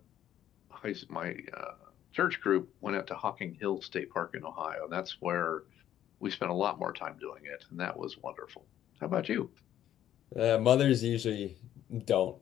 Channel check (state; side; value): quieter; right; 11.4 dB